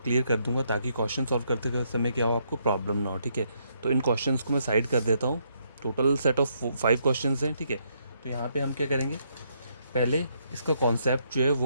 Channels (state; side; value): inverted; both; correlation -0.73